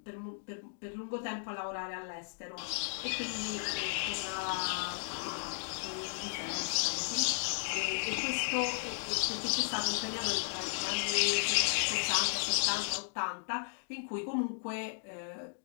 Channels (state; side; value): silent; right; digital silence